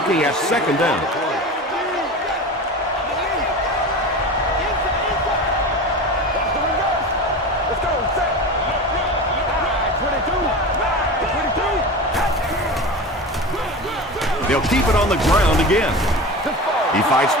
at 2nd down. They'll keep it on the ground again. He fights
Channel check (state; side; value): normal; both; correlation 0.30